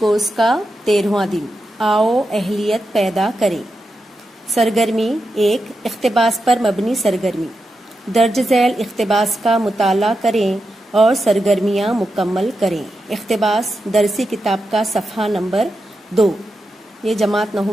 کا 13واں دن، آؤ اہلیت پیدا کریں۔ سرگرمی 1، اقتباس پر مبنی سرگرمی۔ درج ذیل اقتباس کا مطالعہ کریں اور سرگرمیاں مکمل کریں۔ اقتباس درسی کتاب کا صفحہ نمبر 2، یہ جماعت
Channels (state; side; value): normal; both; correlation 0.88